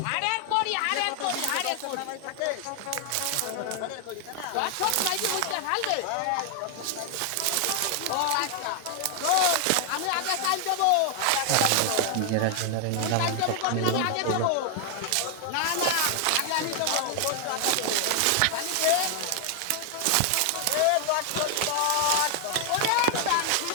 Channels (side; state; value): both; different; correlation 0.00